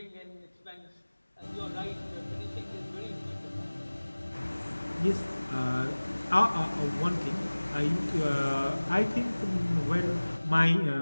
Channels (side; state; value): both; inverted; correlation -1.00